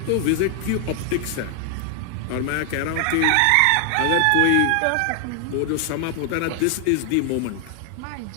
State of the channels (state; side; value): different; both; correlation 0.00